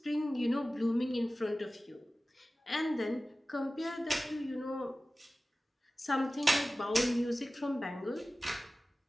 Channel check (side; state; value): both; normal; correlation 0.96